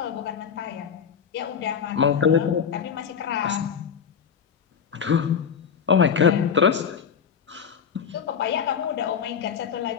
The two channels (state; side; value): quieter; right; 7.1 dB